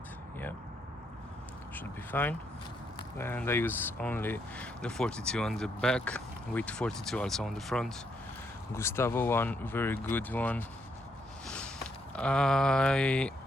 yeah, should be fine. And I use only the 42 on the back with 42 also on the front. Gustavo one, very good one. I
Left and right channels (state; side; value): normal; both; correlation 0.75